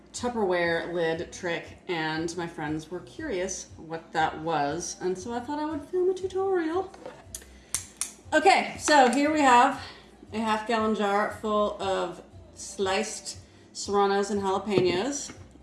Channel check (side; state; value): both; identical; correlation 1.00